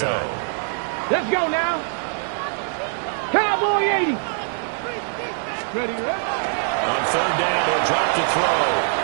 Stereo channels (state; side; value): silent; left; 62 dB below the other